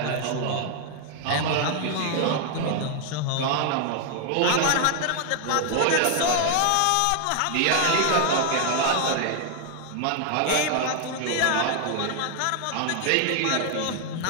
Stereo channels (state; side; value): different; both; correlation 0.00